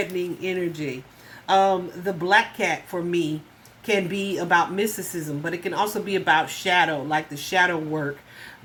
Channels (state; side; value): identical; both; correlation 1.00